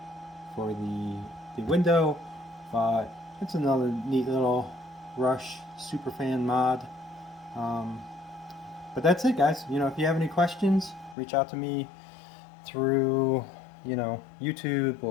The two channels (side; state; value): right; drops out; at 11.2 s